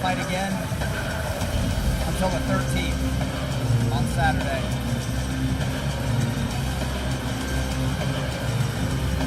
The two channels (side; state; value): both; identical; correlation 1.00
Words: again until the 13th on Saturday.